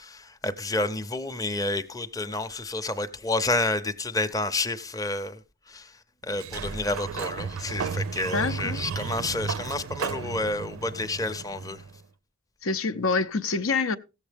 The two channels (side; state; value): both; normal; correlation 0.23